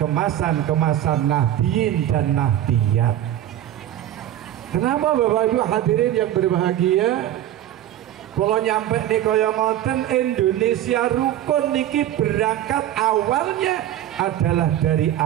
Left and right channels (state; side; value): quieter; left; 12.1 dB